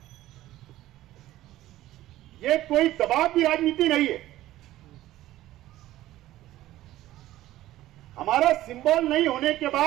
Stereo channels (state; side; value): quieter; left; 15.1 dB